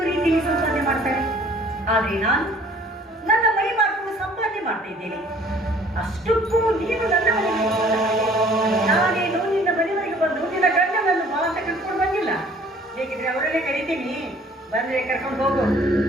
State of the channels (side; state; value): both; normal; correlation 0.55